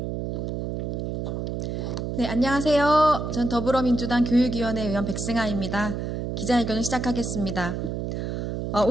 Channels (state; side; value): noise; right; hum, 3 dB below the sound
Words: 네, 안녕하세요. 전 더불어민주당 교육위원회 의원 백승아입니다. 기자회견을 시작하겠습니다.